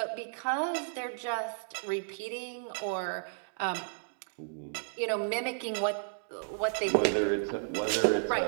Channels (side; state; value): left; silent; digital silence